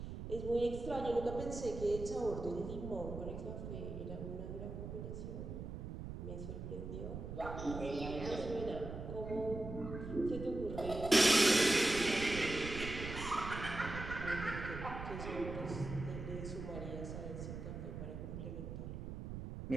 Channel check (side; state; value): right; noise; rumble, 7 dB below the sound